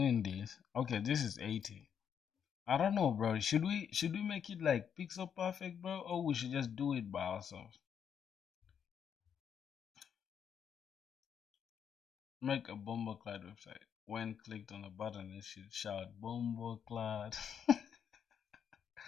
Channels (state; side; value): quieter; right; 7.9 dB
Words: this. Okay, this is 80. I don't know, bro. Should we make it like pixel perfect, bro, or we should just do it by ourselves? Make a bomboclad website. When clicked on a button, it should shout bomboclad.